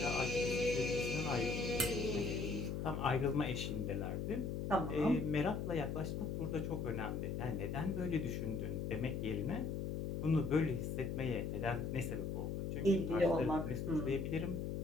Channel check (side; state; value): left; noise; hum, 2 dB below the sound